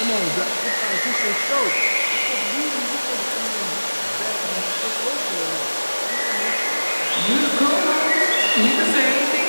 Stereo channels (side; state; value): both; inverted; correlation -1.00